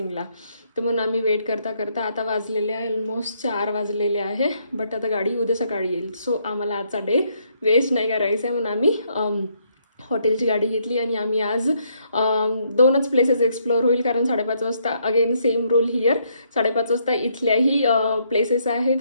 तर म्हणून आम्ही वेट करता करता आता वाजलेले आहे ऑलमोस्ट 4 वाजलेले आहे. बट आता गाडी उद्या सकाळी येईल. सो आम्हाला आजचा डे वेस्ट नाही करायचा आहे म्हणून आम्ही हॉटेलची गाडी घेतली आणि आम्ही आज 2च प्लेसेस एक्सप्लोअर होईल. कारण 5:30 वाजता अगेन सेम रूल हिअर, 5:30 वाजता इथल्याही प्लेसेस आहे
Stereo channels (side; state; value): both; inverted; correlation -0.72